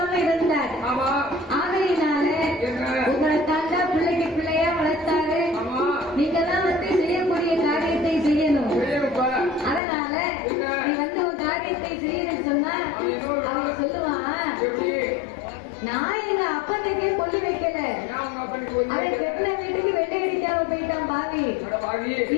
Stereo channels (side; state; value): right; drops out; at 9.8 s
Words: இருந்தார். ஆகையினால உங்களை தாண்டா பிள்ளைக்கு பிள்ளையா வளர்த்தாரு. நீங்கெல்லாம் வந்து செய்யக்கூடிய காரியத்தை செய்யணும். அதனால நீ வந்து உன் காரியத்தை செய்யணும்னு சொன்னா அவன் சொல்லுவான், நான் எங்க அப்பனுக்கே கொல்லி வைக்கல, அவன் கெட்டின வீட்டுக்கு வெள்ளை அடிக்காம போயிட்டான் பாவி,